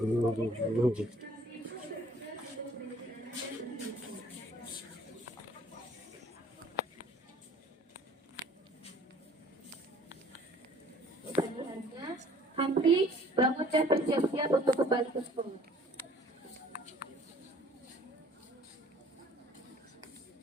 Pilihannya, Hamdi, bangun dan bersiap-siap untuk kembali ke sekolah.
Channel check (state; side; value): normal; both; correlation 0.55